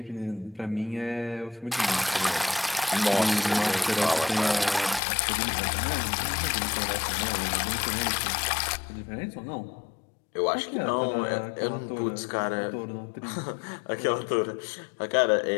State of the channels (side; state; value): right; drops out; at 5.0 s